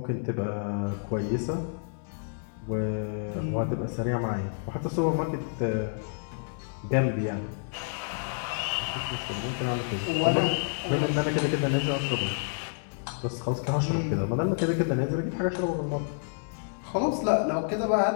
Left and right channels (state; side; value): silent; right; digital silence